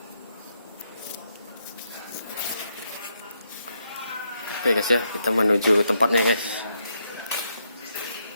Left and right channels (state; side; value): inverted; both; correlation -0.78